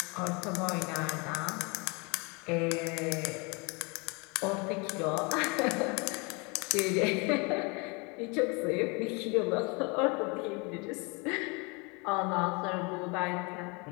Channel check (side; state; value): right; quieter; 30.1 dB